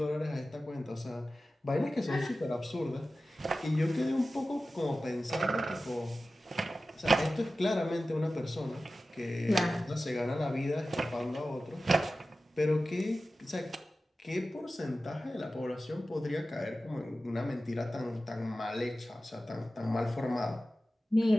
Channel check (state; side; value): normal; both; correlation 0.95